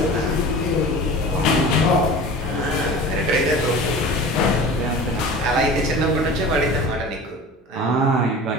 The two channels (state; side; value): normal; both; correlation 0.37